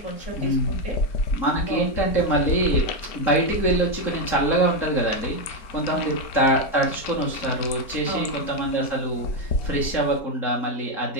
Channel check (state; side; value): late; right; 4.4 ms